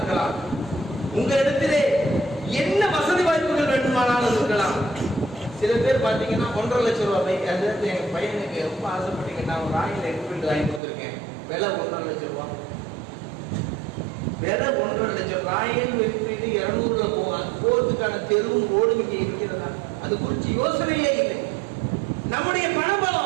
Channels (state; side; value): drops out; left; at 10.8 s